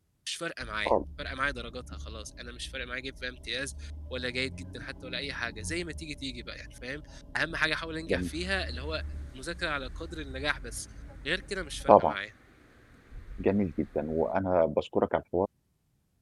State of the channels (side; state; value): both; identical; correlation 1.00